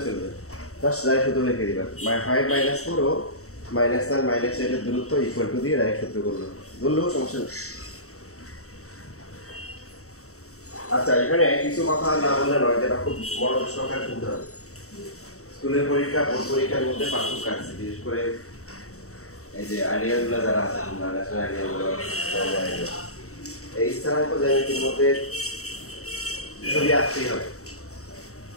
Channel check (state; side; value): late; right; 0.64 ms